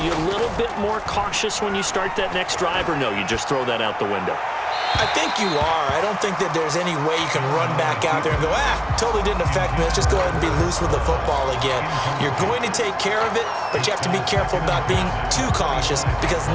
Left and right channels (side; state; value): both; identical; correlation 1.00